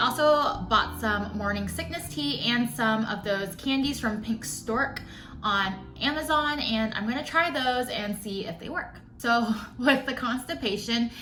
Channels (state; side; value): identical; both; correlation 1.00